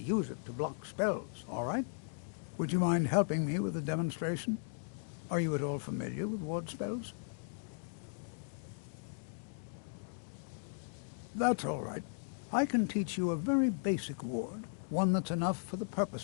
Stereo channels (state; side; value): silent; right; digital silence